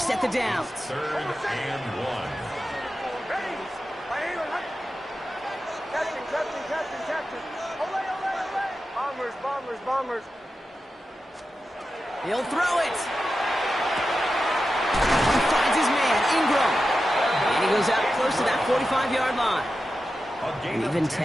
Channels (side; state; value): both; normal; correlation 0.91